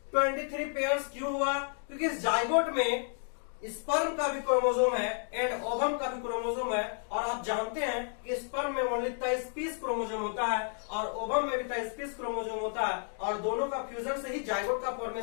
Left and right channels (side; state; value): right; silent; 57 dB below the other